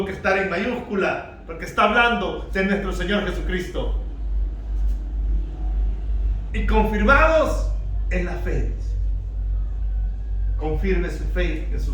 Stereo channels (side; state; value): both; identical; correlation 1.00